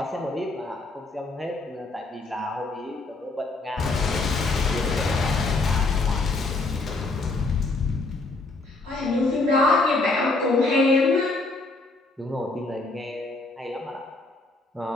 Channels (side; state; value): right; quieter; 3.2 dB